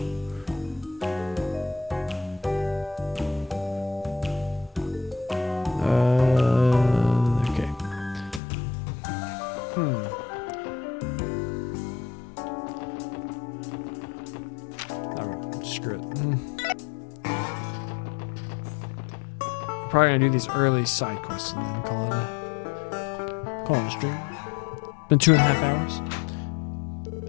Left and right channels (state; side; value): drops out; right; at 8.4 s